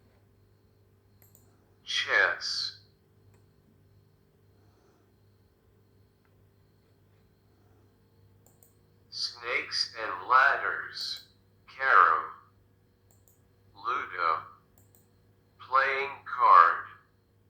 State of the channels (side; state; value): both; identical; correlation 1.00